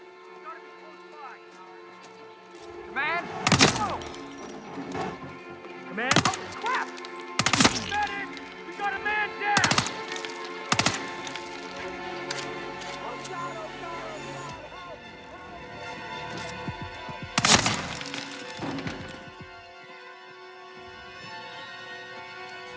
He's gotta be close by. Command! Command? Oh, crap! Medic! We got a man down!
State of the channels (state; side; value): identical; both; correlation 1.00